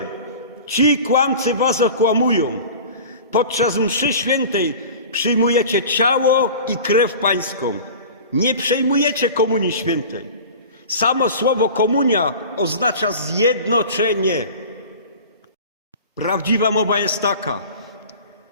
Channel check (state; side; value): inverted; both; correlation -0.38